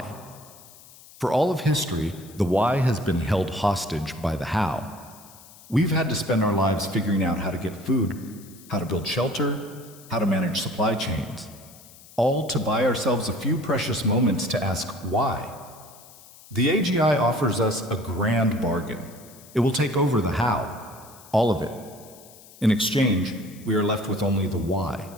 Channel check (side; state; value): left; noise; hiss, 22 dB below the sound